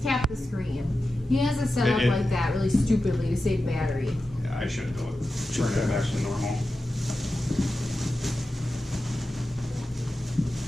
tap the screen. He has it set up like that really stupidly to save battery. Yeah, I should do it. Turn it back to normal.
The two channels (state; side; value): normal; both; correlation 0.92